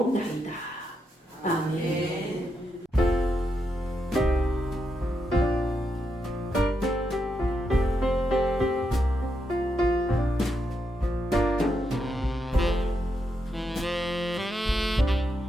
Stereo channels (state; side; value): normal; both; correlation 0.83